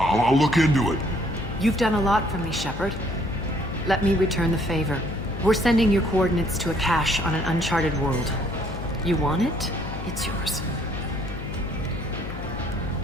look into it. You've done a lot for me, Shepard. Let me return the favor. We're sending your coordinates to a cache on an uncharted world. You want it? It's yours.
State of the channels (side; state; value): left; noise; hum, 9 dB below the sound